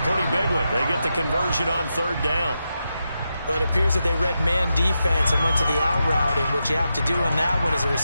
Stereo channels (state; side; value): inverted; both; correlation -0.87